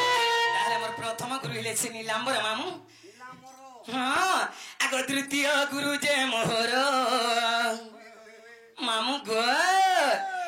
नीलांबर मामू हाँ आगो तृतीय गुरु जे मोहर मामू गो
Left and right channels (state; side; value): identical; both; correlation 1.00